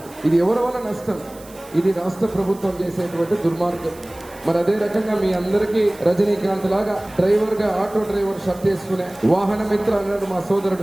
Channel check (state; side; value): noise; right; hiss, 22 dB below the sound